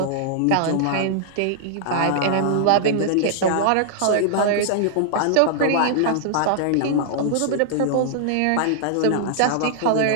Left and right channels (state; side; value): different; both; correlation -0.01